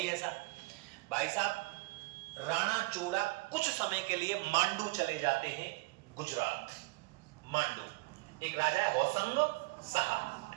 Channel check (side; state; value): left; quieter; 25.6 dB